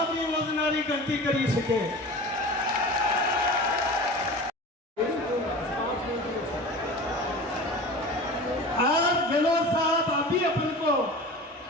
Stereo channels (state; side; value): normal; both; correlation 0.35